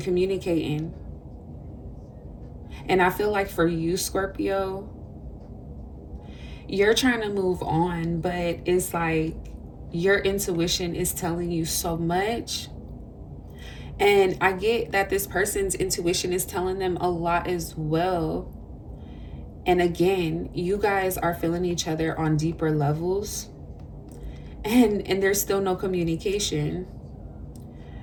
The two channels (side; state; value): both; identical; correlation 1.00